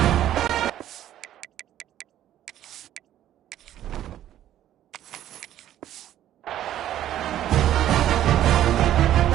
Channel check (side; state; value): left; quieter; 12.1 dB